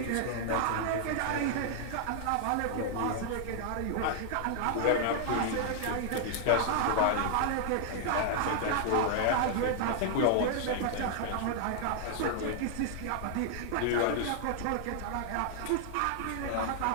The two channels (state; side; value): different; both; correlation -0.01